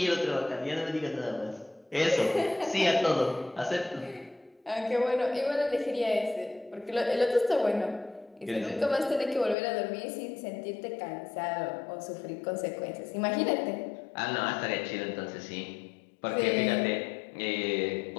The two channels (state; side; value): drops out; right; at 9.6 s